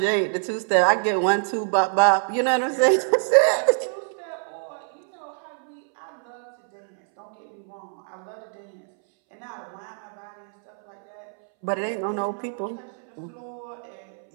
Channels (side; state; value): left; silent; 62 dB below the other